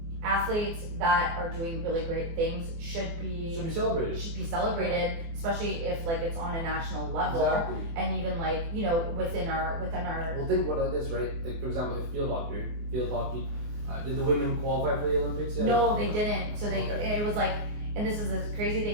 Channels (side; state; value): left; late; 24 ms